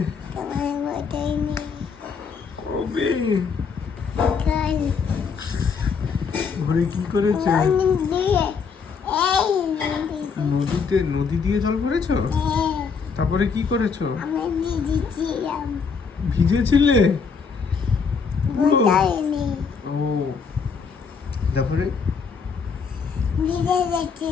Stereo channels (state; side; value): quieter; right; 5.7 dB